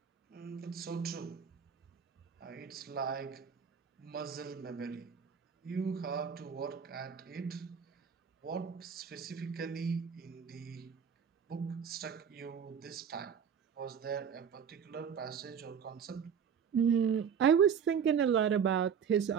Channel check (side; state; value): left; quieter; 7.3 dB